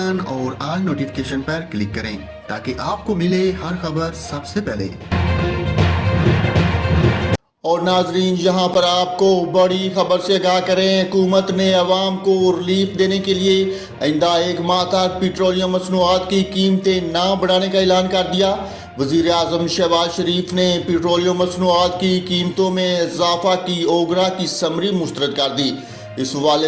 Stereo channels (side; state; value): both; identical; correlation 1.00